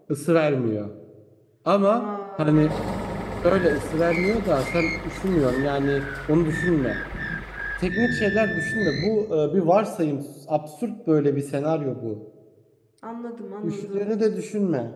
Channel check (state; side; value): identical; both; correlation 1.00